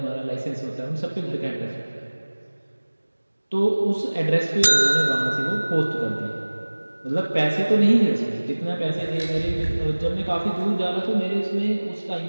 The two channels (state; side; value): inverted; both; correlation -1.00